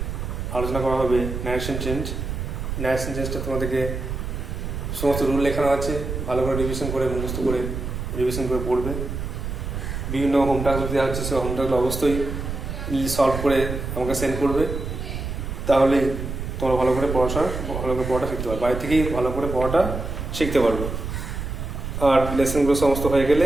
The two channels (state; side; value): noise; right; rumble, 5 dB below the sound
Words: আলোচনা করা হবে ন্যারেশন চেঞ্জটা তোমাদেরকে সমস্ত রুল লেখানো আছে, ভালো করে রিভিশন করে মুখস্থ করে রিভিশন করে পড়বে। বিভিন্ন হোম টাস্ক দেওয়া হচ্ছে, সেই হোম টাস্কগুলো অবশ্যই সলভ করে আমাকে সেন্ড করবে, তাহলে তোমরা ভালো করে পড়াটা শিখতে পারবে, বাড়ি থেকেই ভালো করে পড়াটা শিখতে পারবে। আর লেসনগুলো সমস্ত হয়ে গেলে